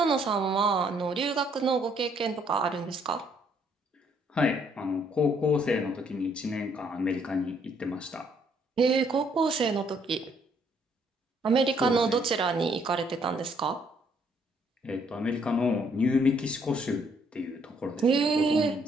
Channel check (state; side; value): normal; both; correlation 0.67